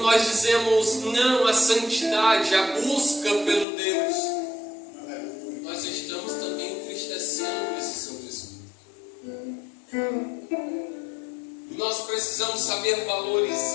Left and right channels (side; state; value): right; drops out; at 3.7 s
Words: dizemos não à santidade, à busca pelo Deus, nós estamos também entristecendo esse Santo Espírito. Nós precisamos saber